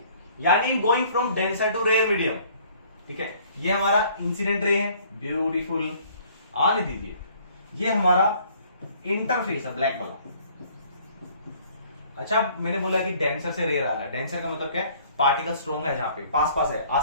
यानी going from denser to rare medium, ठीक है। ये हमारा इंसिडेंट रे है, ब्यूटीफुल, आने दीजिए। ये हमारा इंटरफेस है ब्लैक वाला। अच्छा मैंने बोला कि डेंसर से रेयर आ रहा है, डेंसर का मतलब क्या है, पार्टिकल स्ट्रॉन्ग है, जहां पे पास पास है,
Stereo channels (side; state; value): both; inverted; correlation -0.57